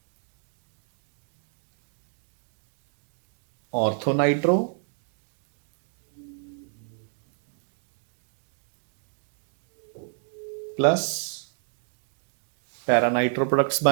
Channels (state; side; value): silent; left; digital silence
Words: ਆਰਥੋ ਨਾਈਟ੍ਰੋ प्लस ਪੈਰਾਨਾਈਟ੍ਰੋ ਪ੍ਰੋਡਕਟਸ